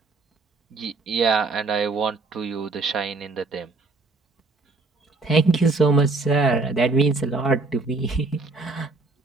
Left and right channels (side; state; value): left; quieter; 3.6 dB